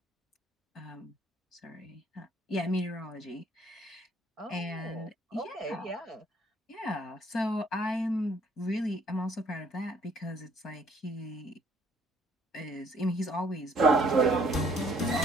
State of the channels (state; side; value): normal; both; correlation 0.62